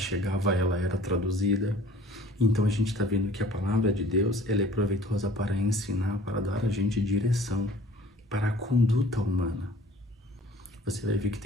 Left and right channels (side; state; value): both; normal; correlation 0.50